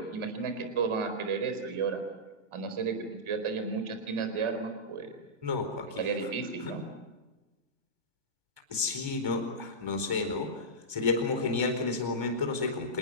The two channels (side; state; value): left; late; 1.2 ms